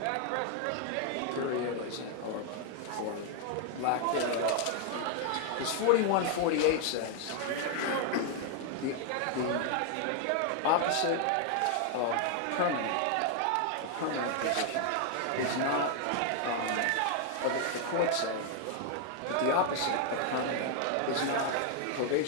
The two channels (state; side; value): different; both; correlation 0.00